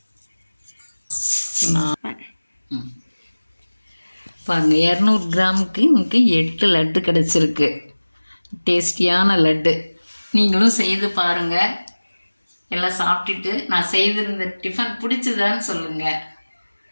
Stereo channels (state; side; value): inverted; both; correlation -1.00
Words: பாருங்கள், 200 கிராமுக்கு நமக்கு 8 லட்டு கிடச்சிருக்கு. டேஸ்டியான லட்டு. நீங்களும் செய்து பாருங்கள். எல்லாம் சாப்பிட்டுட்டு நான் செய்திருந்த டிஃபன் பிடிச்சதான்னு சொல்லுங்கள்.